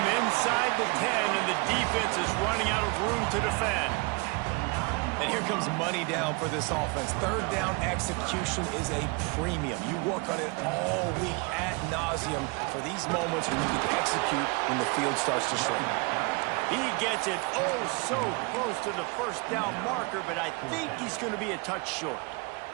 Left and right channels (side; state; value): left; quieter; 29.4 dB